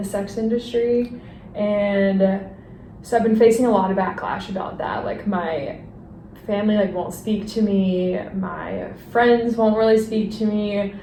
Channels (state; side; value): identical; both; correlation 1.00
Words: sex industry, and so I've been facing a lot of backlash about that. Like my family won't speak to me, my friends won't really speak to me.